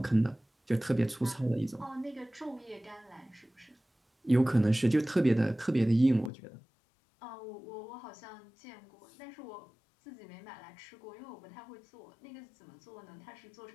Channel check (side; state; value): right; drops out; at 6.3 s